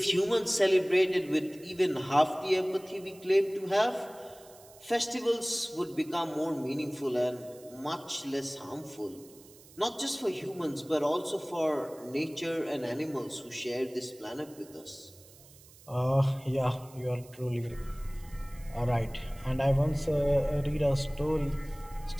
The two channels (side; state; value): right; noise; hiss, 23 dB below the sound